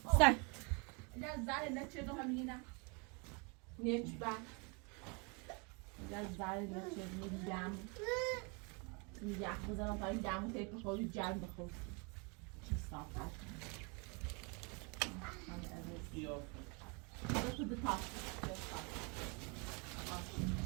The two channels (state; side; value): quieter; left; 32.5 dB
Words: سر زاره نه چه دو همینی نه نیچ با زاره نه چه دو جامو یخ بزنم تا این جامو تله بخور جام بخور چه صاف بیا Go to the top.